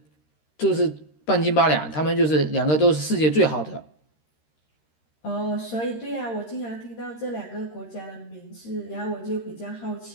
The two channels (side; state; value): right; late; 13 ms